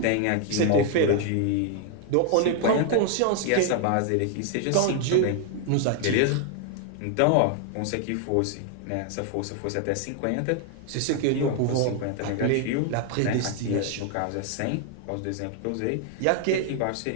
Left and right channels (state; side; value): different; both; correlation 0.00